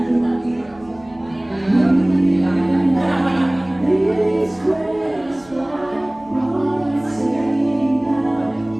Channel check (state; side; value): noise; right; hum, 26 dB below the sound